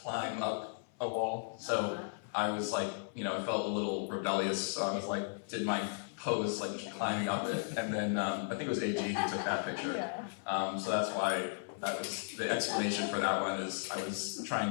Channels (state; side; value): silent; right; 54 dB below the other